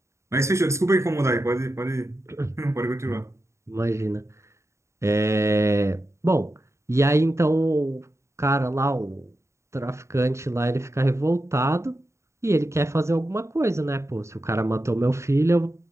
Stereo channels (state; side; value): late; left; 0.14 ms